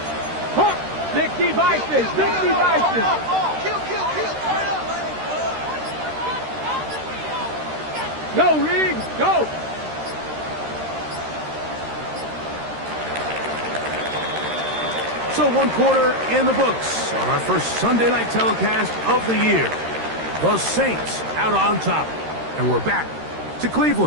60 Vices, 60 Vices. Go, Riggs, go! So 1 quarter in the books on our first Sunday night telecast of the year. The Saints out on top. And we're back to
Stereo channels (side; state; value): left; late; 13 ms